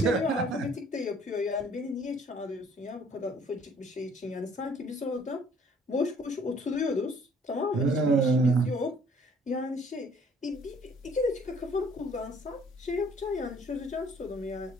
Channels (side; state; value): both; normal; correlation 0.58